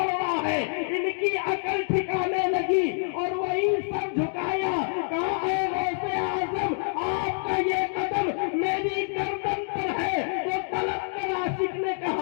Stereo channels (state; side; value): silent; right; 60 dB below the other